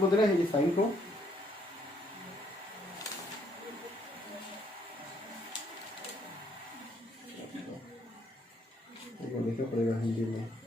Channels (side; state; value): both; normal; correlation 0.69